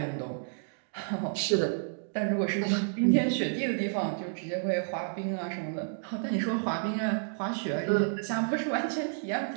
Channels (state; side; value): silent; left; digital silence